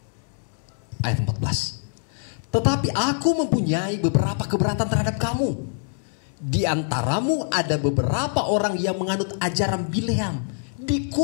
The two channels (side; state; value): right; silent; digital silence